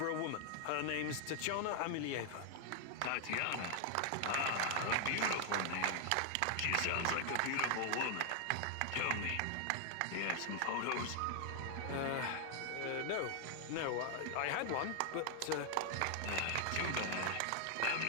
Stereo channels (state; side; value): different; both; correlation 0.00